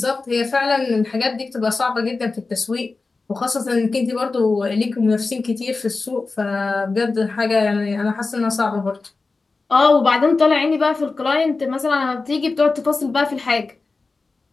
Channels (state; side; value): quieter; right; 3.9 dB